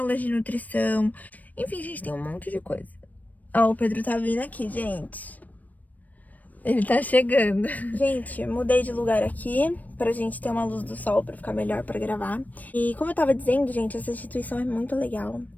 de nutrição. Enfim, gente, tem um monte de coisa. Ó, o Pedro tá vindo aqui, gente. Ele tá chegando. Gente, mudei de lugar aqui pra gente ter uma luz do sol pra ficar melhor pra gravar. E como eu tava dizendo, gente, essa instituição é muito legal.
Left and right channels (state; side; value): late; right; 0.077 ms